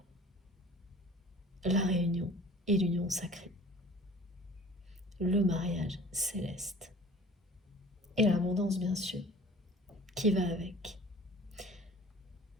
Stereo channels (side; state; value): both; normal; correlation 0.46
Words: La réunion et l'union sacrée. Le mariage céleste. Et l'abondance, bien sûr, qui va avec.